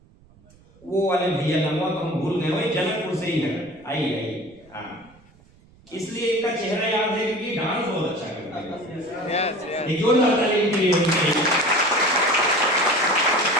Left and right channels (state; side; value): noise; right; rumble, 28 dB below the sound